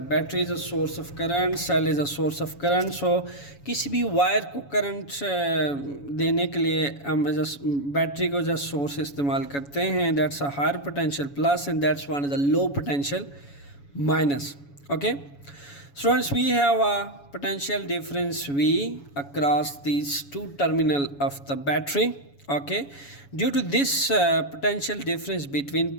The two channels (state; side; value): late; right; 7.1 ms